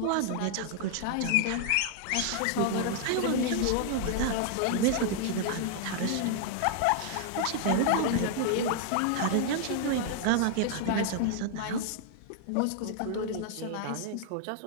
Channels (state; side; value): different; both; correlation 0.00